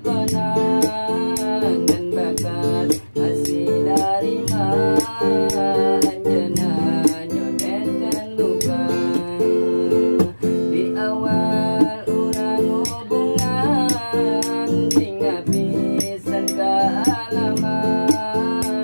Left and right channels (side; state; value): both; inverted; correlation -1.00